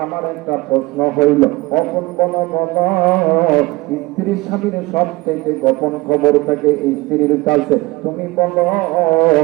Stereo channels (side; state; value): left; quieter; 21.7 dB